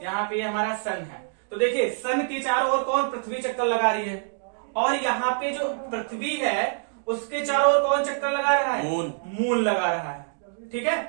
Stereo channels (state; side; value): silent; left; digital silence